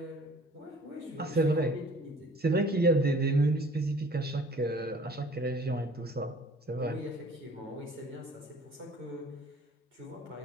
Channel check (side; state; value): both; normal; correlation 0.51